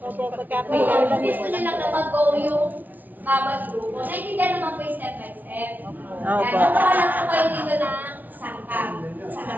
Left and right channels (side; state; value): left; late; 0.088 ms